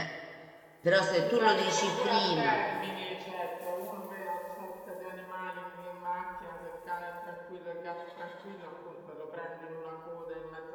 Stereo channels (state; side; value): identical; both; correlation 1.00